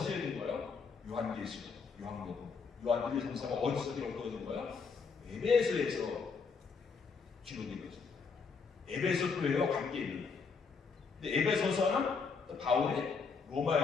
거예요? 요한계시록, 요한복음, 요한 1, 2, 3서가 어디서 기록되어진 거예요? 에베소에서 기록된 거죠. 에베소 교회와 관계 있는 거예요. 근데 에베소서는 또 바울이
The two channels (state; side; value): quieter; right; 5.2 dB